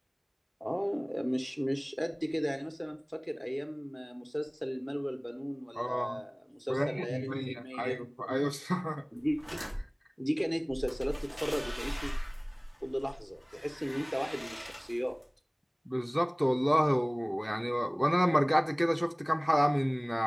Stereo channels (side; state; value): both; identical; correlation 1.00